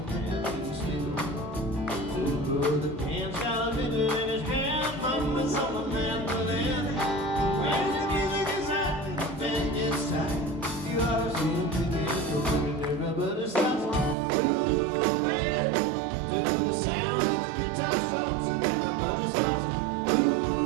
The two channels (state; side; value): drops out; left; at 14.2 s